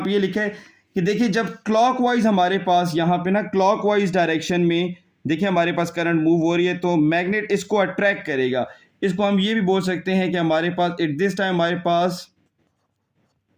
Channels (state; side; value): identical; both; correlation 1.00